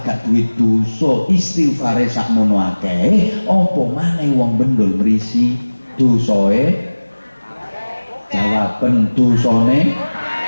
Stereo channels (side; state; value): both; inverted; correlation -1.00